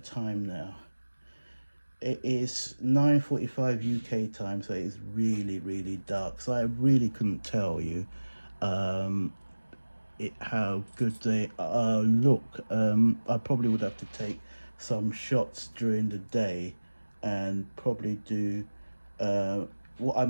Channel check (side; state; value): both; inverted; correlation -1.00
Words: now? It is 9:45 UK time, so it's really, really dark. So I really couldn't tell you how good they look. I probably would have to take some shots during the day and probably do what I